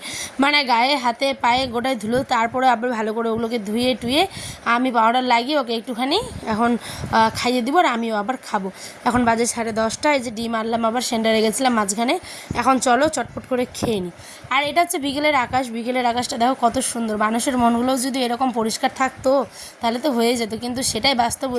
মানে গায়ে হাতে পায়ে গোটায় ধুলো, তারপরে আবার ভালো করে ওগুলোকে ধুয়ে টুয়ে আমি পাউডার লাগিয়ে ওকে একটুখানি এখন খাইয়ে দিব, আর আমিও আবার খাবো। এখন বাজে 10:30, এই যে ডিম আনলাম, আবার সেন্টারে গেছিলাম মাঝখানে। এখন চলো চটপট করে খেয়ে নিই। আর এটা হচ্ছে বিকেলের আকাশ, বিকেলের আকাশটা দেখো কত সুন্দর। মানুষের মনগুলোও যদি এরকম পরিষ্কার থাকতো তাহলে তো হয়ে যেত, কিন্তু সেটাই বাস্তব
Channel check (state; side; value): identical; both; correlation 1.00